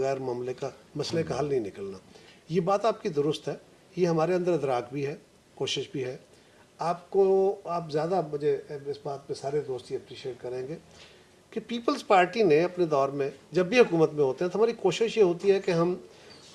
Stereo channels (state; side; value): identical; both; correlation 1.00